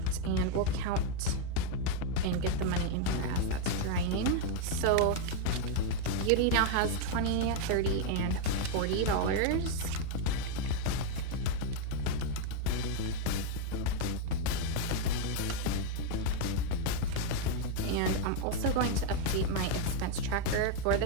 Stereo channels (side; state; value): both; different; correlation 0.01